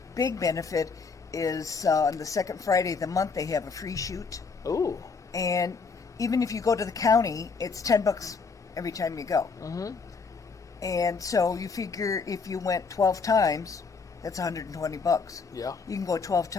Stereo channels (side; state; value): right; quieter; 4.9 dB